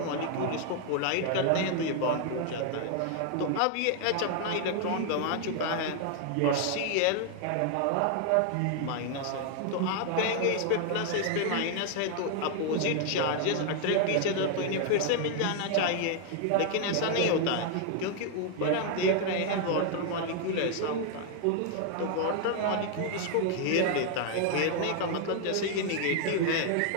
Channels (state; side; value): different; both; correlation 0.00